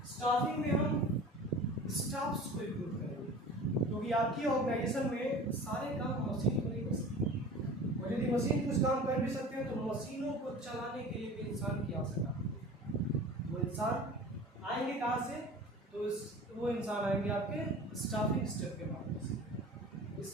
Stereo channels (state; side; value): normal; both; correlation 0.39